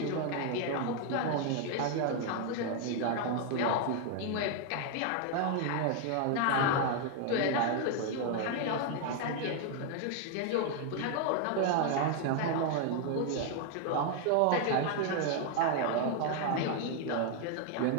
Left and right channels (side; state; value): both; different; correlation 0.00